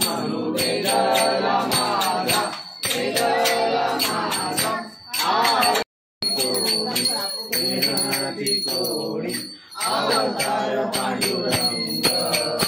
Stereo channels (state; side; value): identical; both; correlation 1.00